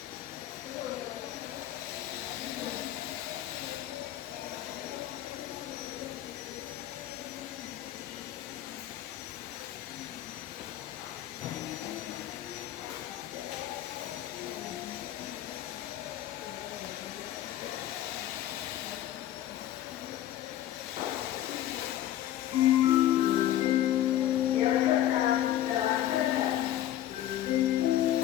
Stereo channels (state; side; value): quieter; right; 12.6 dB